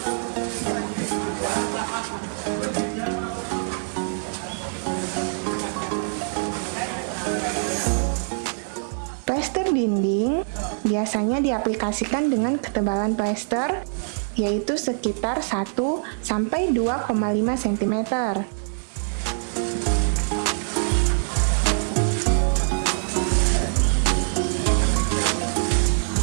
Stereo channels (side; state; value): left; silent; digital silence